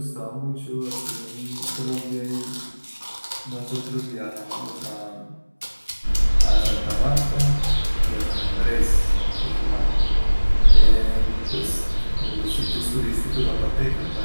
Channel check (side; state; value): both; inverted; correlation -1.00